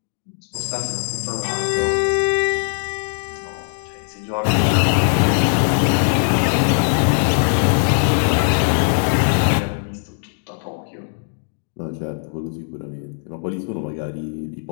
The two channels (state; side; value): silent; right; digital silence